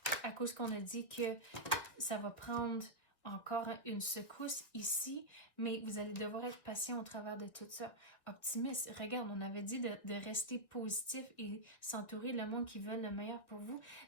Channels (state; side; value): late; right; 1.8 ms